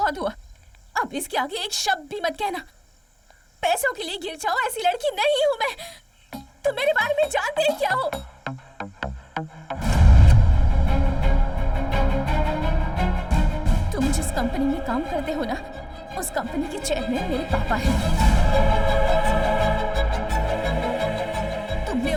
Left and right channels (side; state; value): both; identical; correlation 1.00